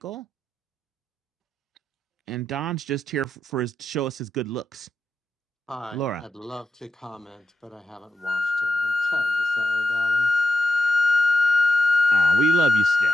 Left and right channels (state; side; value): normal; both; correlation 0.87